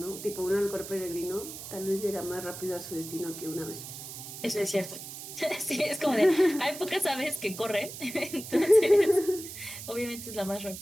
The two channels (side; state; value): right; noise; hiss, 11 dB below the sound